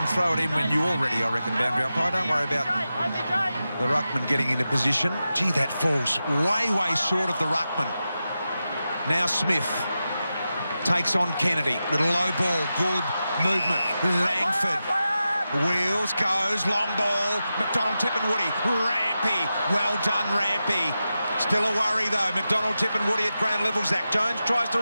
throw it in when you're ready, I reckon, boundary umpire. Don't worry about the ruckman getting into position. Gee, that falls way, way short of the ruckman. Now Smith takes on Kennedy. Little low ball, good movement. Langford wheels, goes, long ball. McDonald, Tippenwoody, Rampy. Well done, Rampy. Still a worry, though. McDonald, Tippenwoody at ground level. Zach Jones tries to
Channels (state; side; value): inverted; both; correlation -0.91